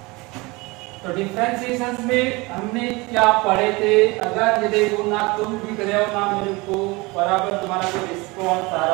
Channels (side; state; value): left; quieter; 24.4 dB